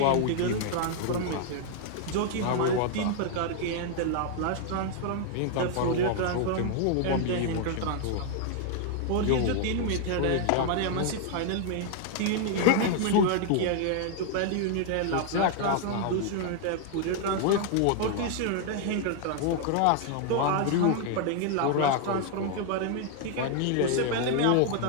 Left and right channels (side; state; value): both; different; correlation 0.00